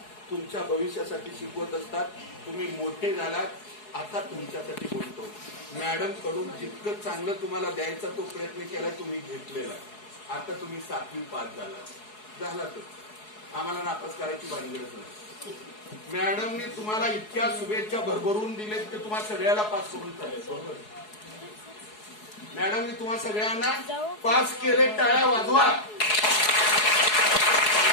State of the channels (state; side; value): late; right; 4.7 ms